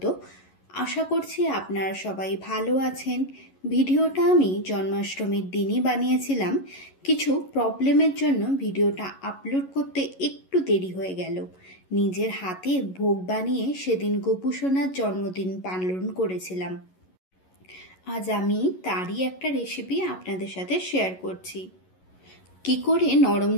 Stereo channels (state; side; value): late; right; 11 ms